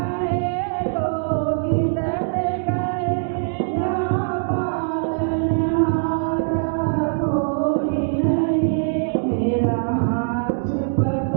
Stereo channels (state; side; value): silent; left; digital silence